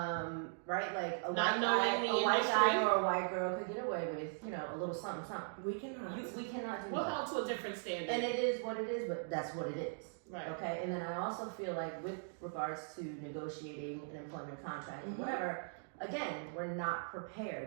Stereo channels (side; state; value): left; silent; digital silence